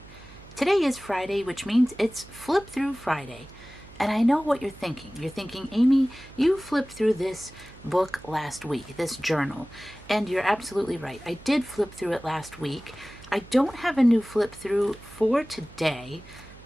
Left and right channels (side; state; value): right; noise; hum, 20 dB below the sound